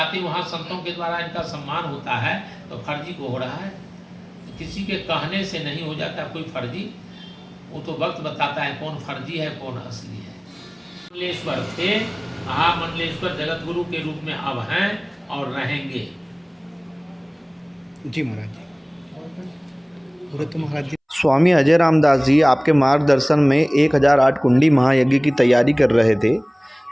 वहाँ संतों के द्वारा इनका सम्मान होता है, तो फर्जी को हो रहा है। तो किसी के कहने से नहीं हो जाता कोई फर्जी, वो तो वक्त बताता है कौन फर्जी है कौन असली है। मंडलेश्वर थे, महामंडलेश्वर जगत गुरु के रूप में अब हैं और रहेंगे। जी महाराज जी। तो महाराज जी, स्वामी अजय रामदास जी आपके मार्गदर्शन में 1008 कुंडी महायज्ञ की तैयारी कर रहे थे,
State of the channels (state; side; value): identical; both; correlation 1.00